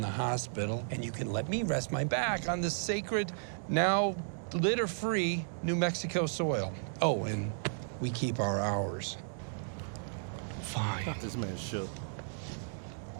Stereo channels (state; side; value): silent; left; digital silence